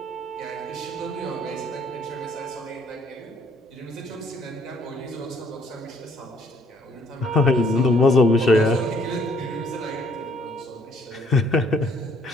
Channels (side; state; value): both; normal; correlation 0.64